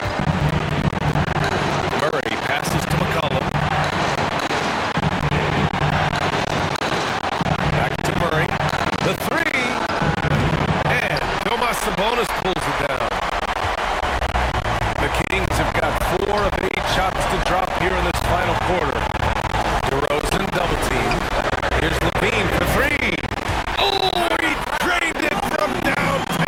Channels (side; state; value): both; identical; correlation 1.00